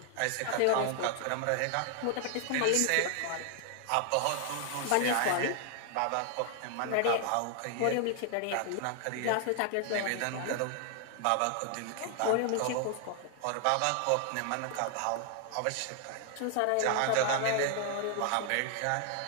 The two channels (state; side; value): different; both; correlation 0.00